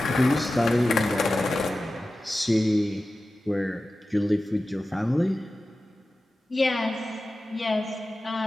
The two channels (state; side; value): normal; both; correlation 0.95